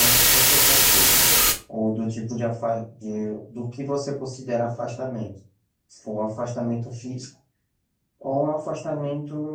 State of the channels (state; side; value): identical; both; correlation 1.00